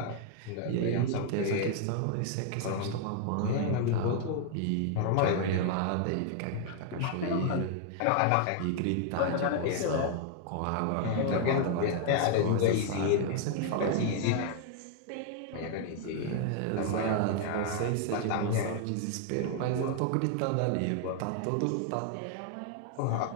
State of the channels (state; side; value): different; both; correlation 0.00